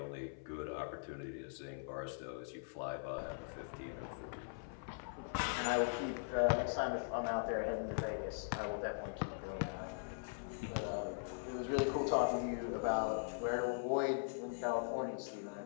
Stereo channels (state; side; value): silent; right; 50 dB below the other